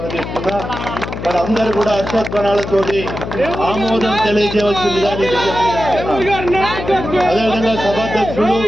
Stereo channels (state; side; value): noise; left; hum, 7 dB below the sound